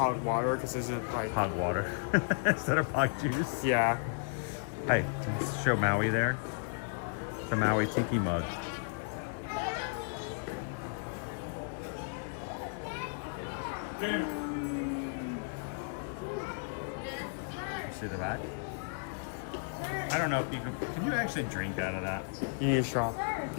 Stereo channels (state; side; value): silent; right; digital silence